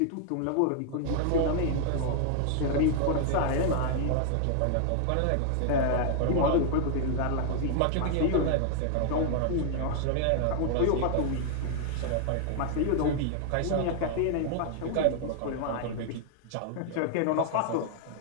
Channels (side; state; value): both; different; correlation 0.00